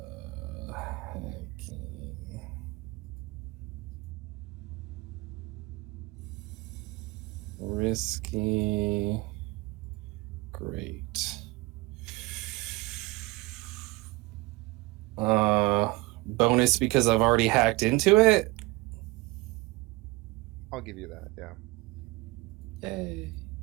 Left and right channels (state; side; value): quieter; left; 22.2 dB